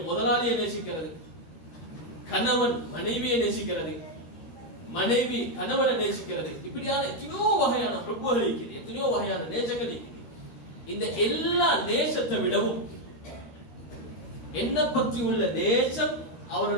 முதலாளியை நேசிக்கிறது, கணவன் மனைவியை நேசிக்கிறது, மனைவி கணவனை நேசிக்கிறது, இப்படியான எத்தனையோ வகையான ஹுக்குகள் இருக்குது, எத்தனையோ வகையான நேசங்கள் இருக்குது. இந்த எல்லா நேசத்தை விடவும் என்ன பற்றி உள்ள நேசம்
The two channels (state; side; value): late; right; 13 ms